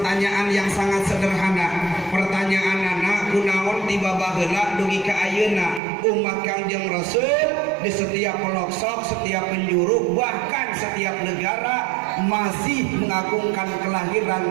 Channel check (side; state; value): left; drops out; at 5.8 s